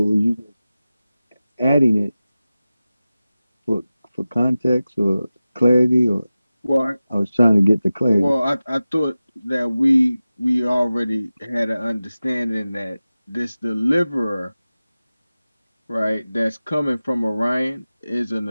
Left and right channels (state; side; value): inverted; both; correlation -0.96